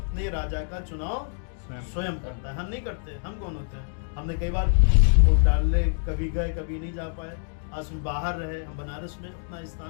राजा का चुनाव स्वयं करता है, हम नहीं करते। हम कौन होते हैं? हमने कई बार वोट डालने कभी गए, कभी नहीं जा पाए। आज हम बाहर रहे, हम बनारस में अपना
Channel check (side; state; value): right; silent; digital silence